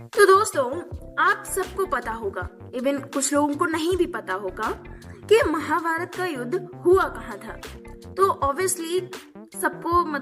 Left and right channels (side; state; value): both; identical; correlation 1.00